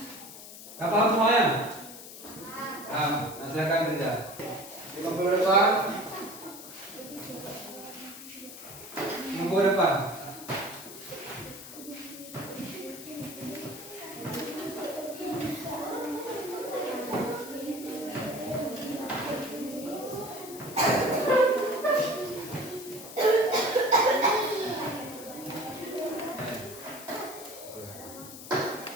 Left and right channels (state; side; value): noise; left; hiss, 13 dB below the sound